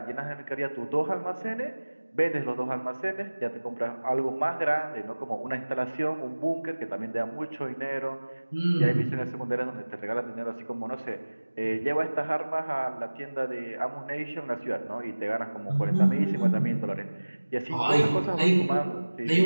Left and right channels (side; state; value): both; inverted; correlation -1.00